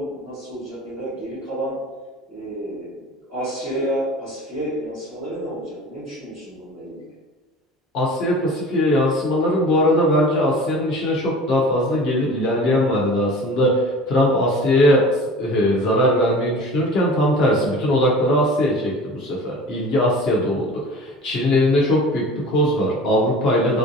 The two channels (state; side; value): normal; both; correlation 0.40